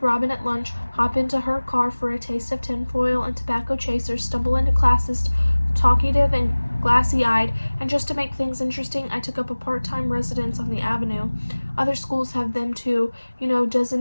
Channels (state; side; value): inverted; both; correlation -1.00